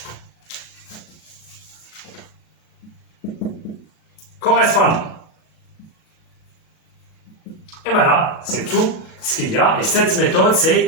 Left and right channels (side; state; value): right; late; 37 ms